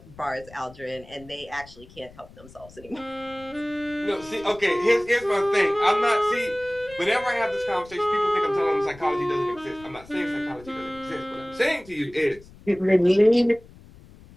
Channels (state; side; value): noise; left; rumble, 22 dB below the sound